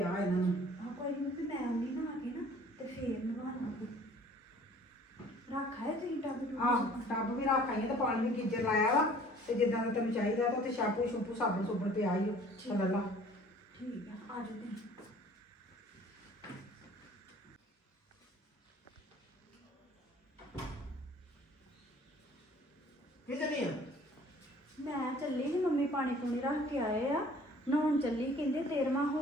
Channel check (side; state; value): both; normal; correlation 0.52